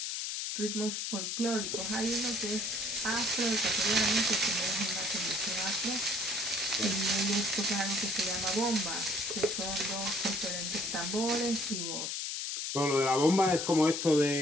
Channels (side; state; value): left; noise; hiss, 2 dB below the sound